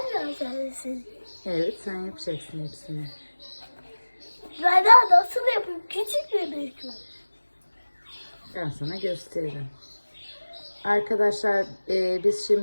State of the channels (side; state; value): both; inverted; correlation -1.00